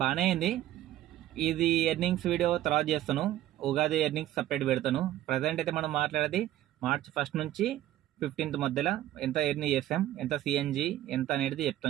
బాగానే అయింది. ఇది ఎర్నింగ్స్ వీడియో తర్వాత చేస్తాను. ఉగాది ఎర్నింగ్స్ సపరేట్ పెడతాను. ప్రజెంట్ అయితే మనం మాట్లాడేది మార్చ్ 1 నుంచి 15th మధ్యలో ఎంత ఎర్నీ చేసాం, ఎంత సిఎన్జి ఎంత అనేది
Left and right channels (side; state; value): left; quieter; 13.7 dB